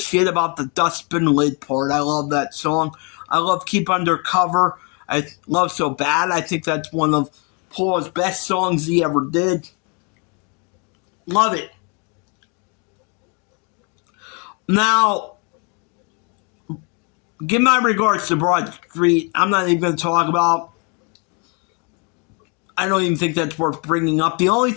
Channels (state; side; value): quieter; right; 34.5 dB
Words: about the dustbin lid part. I love that song. I love Keep Undercover. I love So Bad. I think that's one of Paul's best songs he ever did. Love it. Now, give my regards to Broad Street. I'm not even going to talk about. I don't even think that's worth bringing up. The only